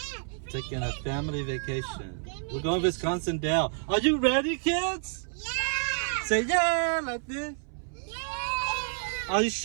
Taking a family vacation. We're going to Wisconsin Dells. Are you ready, kids? Yeah! Say yeah like this. Yeah! Are you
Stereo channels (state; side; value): silent; left; 58 dB below the other